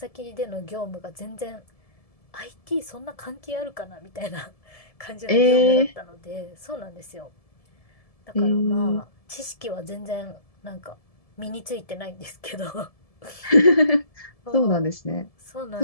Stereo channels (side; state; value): right; late; 1.7 ms